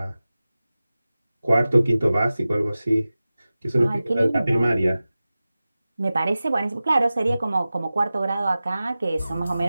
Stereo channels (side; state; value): both; inverted; correlation -0.96